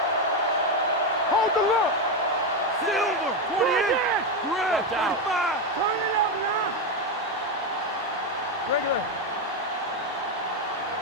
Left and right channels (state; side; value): normal; both; correlation 0.09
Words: Hold the look. Silver, 28. Red, 35. Turn it up now. Regular.